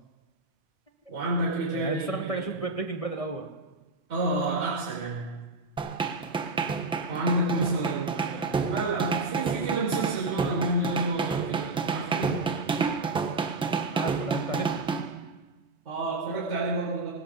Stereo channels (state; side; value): quieter; left; 3.1 dB